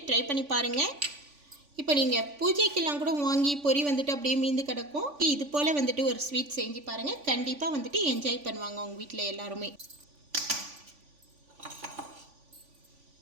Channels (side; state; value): left; late; 3.5 ms